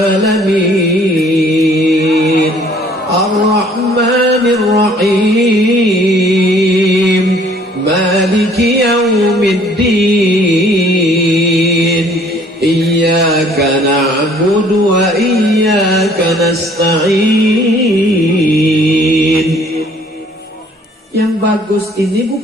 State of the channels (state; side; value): normal; both; correlation 0.58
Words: Ar-Rahmanir Rahim. Maliki yaumiddin. Iyyaka na'budu wa iyyaka nasta'in. Yang bagus ini